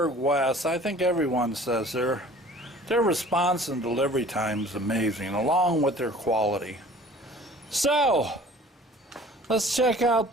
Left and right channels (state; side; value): normal; both; correlation 0.48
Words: West, I think everyone says their response and delivery time is amazing, along with their quality. So let's check out